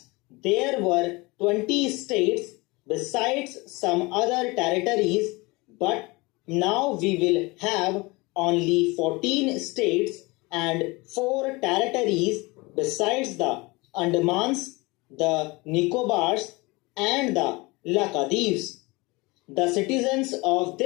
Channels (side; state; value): right; quieter; 24.5 dB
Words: there were 20 states besides some other territories, but now we will have only 14 states and 4 territories besides the Andamans, the Nicobars, and the Lakshadweeps. The citizens of